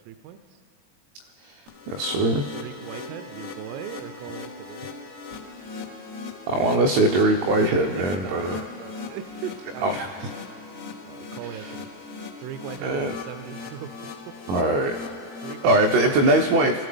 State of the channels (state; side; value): late; left; 22 ms